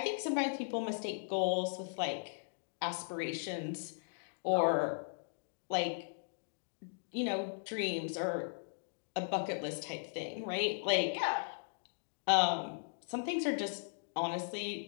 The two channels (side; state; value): right; silent; digital silence